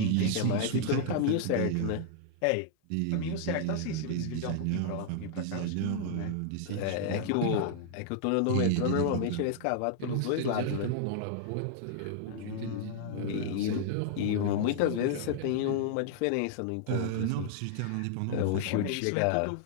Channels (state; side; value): different; both; correlation -0.01